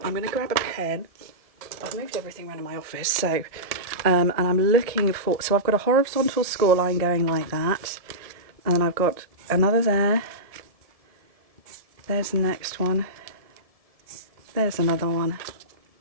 I'm going to grab a pen. I've moved everything around in my office, so and I'm looking for, so I've got a horizontal score line going like that, and then I've got another there, there's the next one, there's another one,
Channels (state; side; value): late; left; 1.7 ms